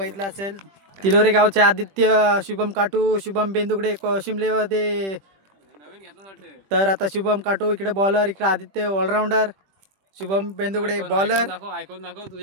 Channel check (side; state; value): left; late; 21 ms